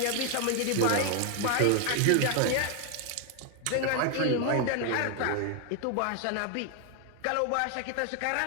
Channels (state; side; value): different; both; correlation 0.00